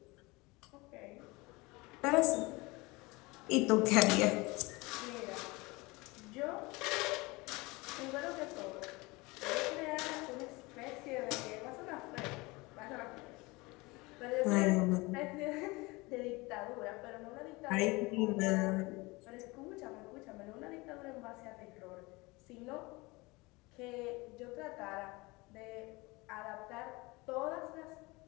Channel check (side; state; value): right; quieter; 24.0 dB